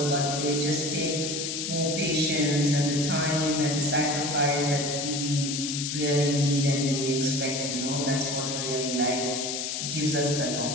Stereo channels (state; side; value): noise; left; hiss, 3 dB below the sound